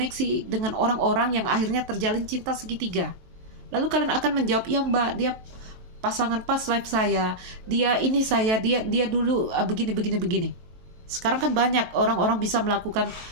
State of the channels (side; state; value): left; late; 23 ms